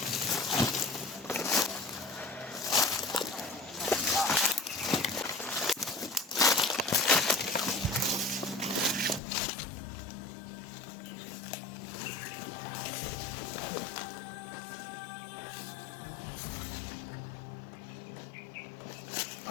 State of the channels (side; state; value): right; drops out; at 9.2 s